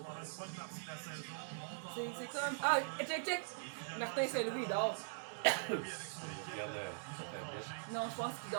une bonne partie de la saison. C'est comme. Ah, check! Martin Saint-Louis, il dort. Lui, avec son équipe, ils ont tranché. Non, je pense qu'il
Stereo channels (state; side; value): silent; left; digital silence